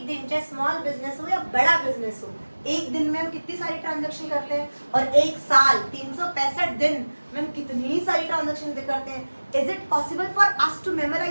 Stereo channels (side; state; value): both; inverted; correlation -1.00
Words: दिन, चाहे स्मॉल बिजनेस हो या बड़ा बिजनेस हो, एक दिन में हम कितनी सारी ट्रांजैक्शन करते हैं, और एक साल 365 दिन में हम कितनी सारी ट्रांजैक्शन करते हैं। Is it possible for us to